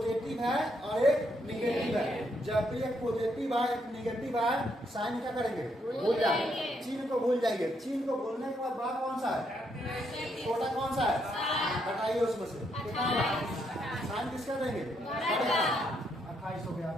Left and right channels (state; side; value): normal; both; correlation 0.76